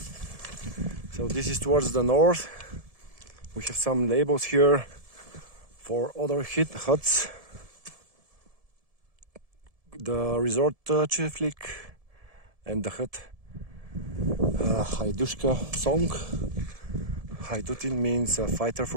So this is towards the north. We have some labels here for other huts. The resort cheflik and the hut Haidushka song. Haidutin means a fighter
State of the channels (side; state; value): left; late; 1.7 ms